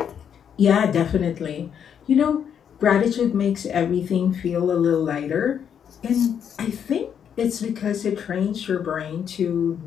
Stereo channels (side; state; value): right; quieter; 8.2 dB